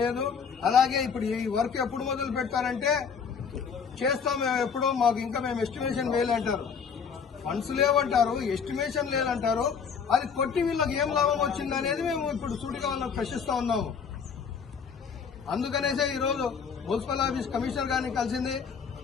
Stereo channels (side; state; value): right; quieter; 6.3 dB